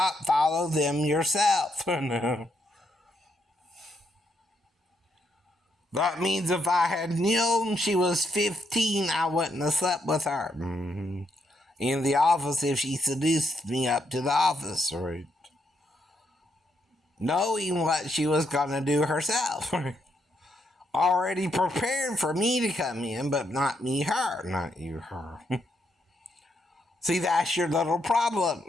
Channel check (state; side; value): normal; both; correlation 0.78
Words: follow them yourself. No. That means if I had known she was 15, I wouldn't have slept with her. Mm-hmm. In the office if she seduced me up to the office, right? Knowing what she was going to do herself. Already prepared for me to come in, but not me, her. Not you, her. See, that's your little problem.